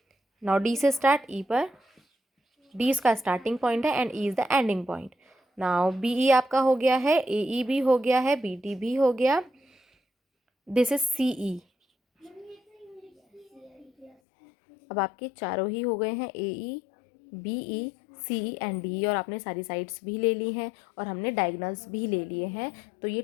Now D से स्टार्ट, ई पर, डी इसका स्टार्टिंग पॉइंट है and E is the ending point. Now B E आपका हो गया है, ए ई भी हो गया है, बी डी भी हो गया, दिस इज सी ई। अब आपके चारों ही हो गए हैं, A E, B E, C E and D, और आपने सारी साइड्स भी ले ली हैं और हमने डायगोनल्स भी ले लिए हैं। तो ये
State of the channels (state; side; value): drops out; right; at 14.2 s